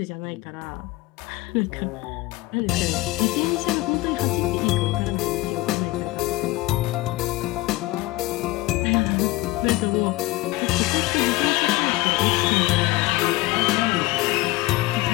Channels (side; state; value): right; quieter; 19.1 dB